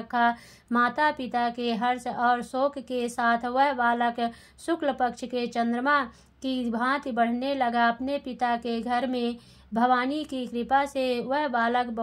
माता पिता के हर्ष और शोक के साथ वह बालक शुक्ल पक्ष के चंद्रमा की भांति बढ़ने लगा। अपने पिता के घर में भवानी की कृपा से वह बालक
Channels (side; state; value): both; identical; correlation 1.00